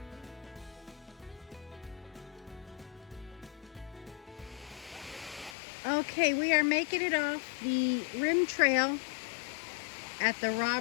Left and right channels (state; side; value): drops out; right; at 5.6 s